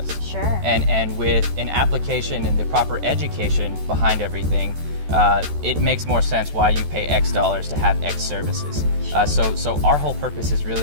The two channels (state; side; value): late; left; 14 ms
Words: Sure. And with an application and the proper education behind everything, it makes more sense why you pay X dollars to have X services. So our whole purpose is